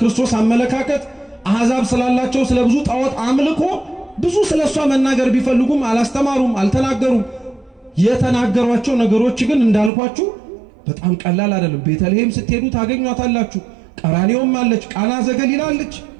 አመለካከት አሕዛብ ስላላቸው ስለ ብዙ ጣዖት አምልኮ ብዙ ስለሷ መናገር ቢፈልጉም አላስተማሩም፣ አልተናገሩም። የተናገሯቸው ነገሮች ግን እንዳልኳችሁ በጣም ቀላል አይደለም። ቤተልሔም ስትሄዱ ታገኟታላችሁ። ቀራንዮም አለች፣ ቃና ዘገሊላ አለች።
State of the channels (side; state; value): left; drops out; at 9.9 s